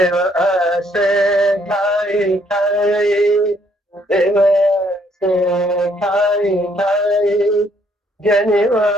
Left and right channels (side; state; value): both; normal; correlation 0.67